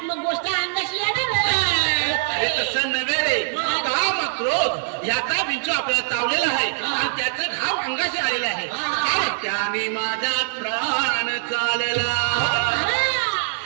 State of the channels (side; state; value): left; silent; digital silence